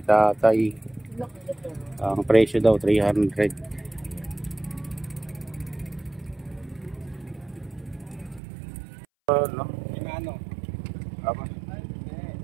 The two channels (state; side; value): drops out; left; at 8.4 s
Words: tatay. Ang presyo daw 300. No?